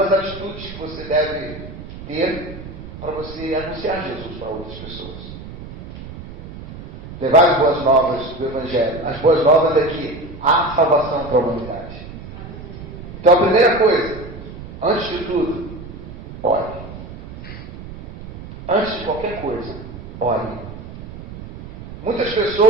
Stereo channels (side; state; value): right; noise; rumble, 13 dB below the sound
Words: atitudes que você deve ter para você anunciar Jesus para outras pessoas. Levar as boas novas do Evangelho. As boas novas é que há salvação para a humanidade. Então a primeira coisa, antes de tudo, ore. Antes de qualquer coisa, ore. Muitas